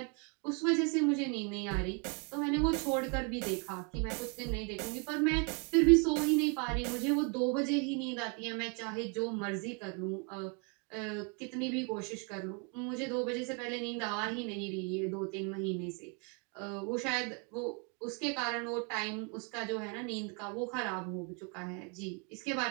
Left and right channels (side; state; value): left; quieter; 35.6 dB